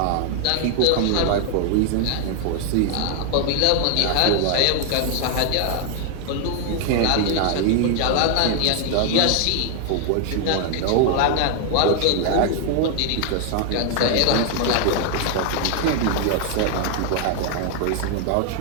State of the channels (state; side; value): different; both; correlation 0.00